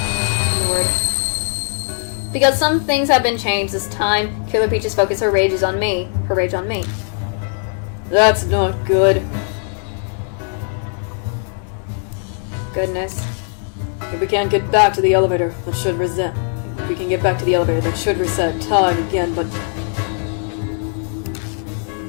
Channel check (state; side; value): silent; right; 56 dB below the other